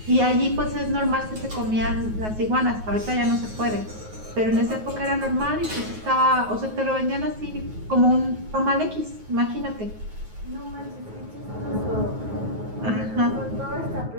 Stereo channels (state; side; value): late; left; 9.4 ms